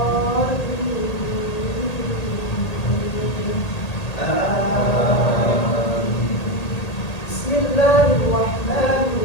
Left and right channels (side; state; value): right; late; 1.8 ms